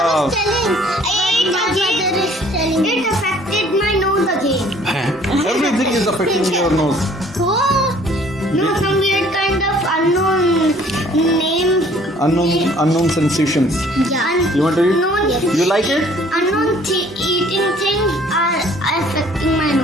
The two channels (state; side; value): normal; both; correlation 0.56